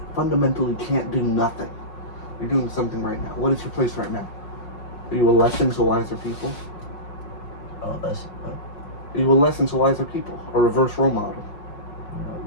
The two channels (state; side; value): late; right; 5.5 ms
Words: fundamentally can't do nothing. You're doing something right now. What is your place right now? Are you a lesson to wiser people? Oh, that's. Are you a lesson to wiser people? A reverse role model?